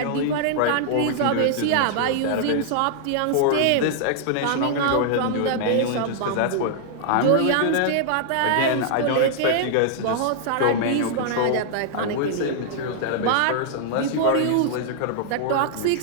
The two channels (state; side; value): different; both; correlation -0.01